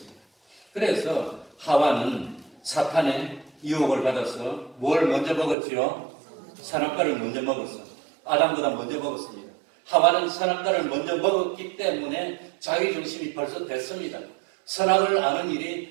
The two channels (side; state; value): left; drops out; at 5.6 s